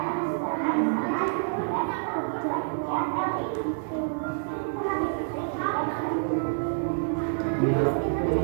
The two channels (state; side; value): silent; left; digital silence